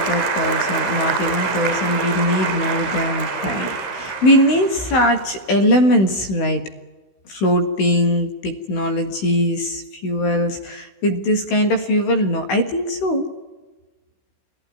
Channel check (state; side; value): late; right; 16 ms